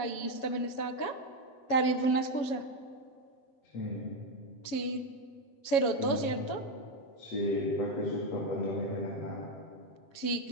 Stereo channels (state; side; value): late; right; 7.2 ms